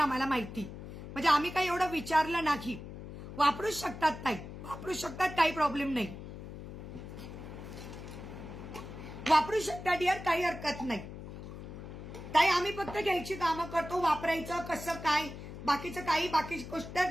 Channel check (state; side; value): noise; left; hum, 11 dB below the sound